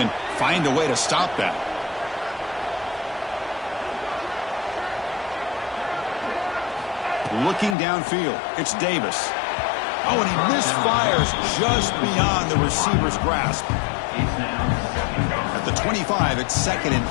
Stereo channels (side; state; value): right; drops out; at 7.8 s